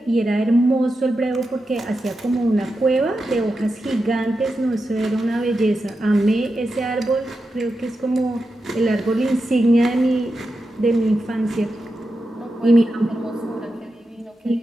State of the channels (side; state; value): both; normal; correlation 0.89